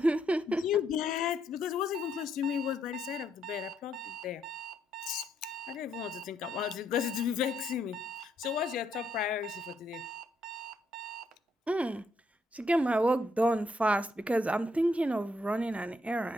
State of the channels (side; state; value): both; normal; correlation 0.74